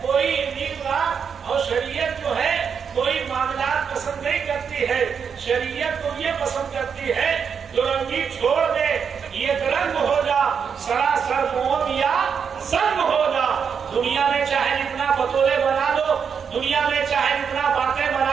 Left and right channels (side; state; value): left; quieter; 6.7 dB